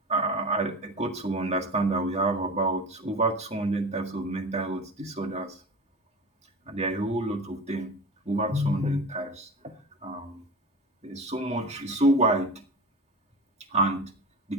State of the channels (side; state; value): both; normal; correlation 0.30